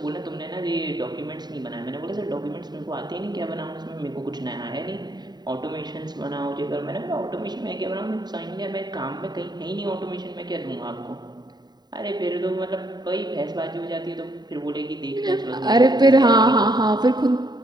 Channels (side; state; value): left; late; 0.20 ms